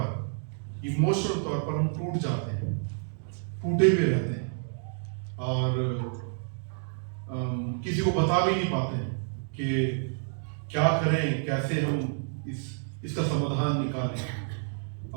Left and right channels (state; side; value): silent; left; digital silence